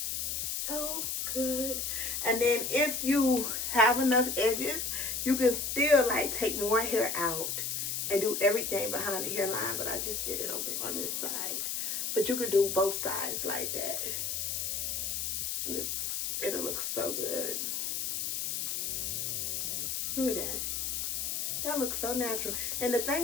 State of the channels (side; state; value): left; noise; hiss, 1 dB below the sound